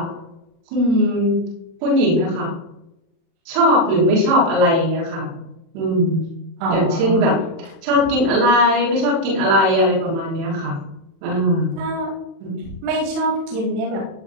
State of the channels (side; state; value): left; late; 36 ms